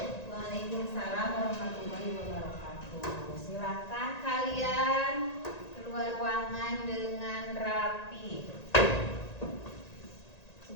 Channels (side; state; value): right; late; 1.9 ms